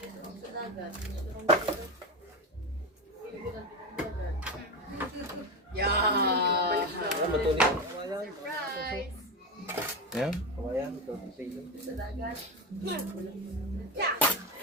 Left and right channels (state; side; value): normal; both; correlation 0.17